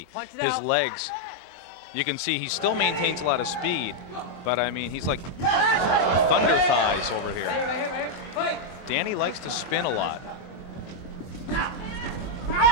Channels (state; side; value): late; right; 23 ms